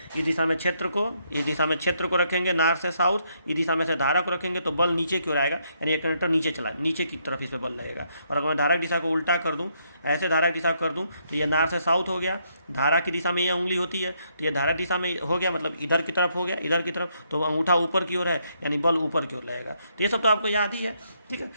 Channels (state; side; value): inverted; both; correlation -0.74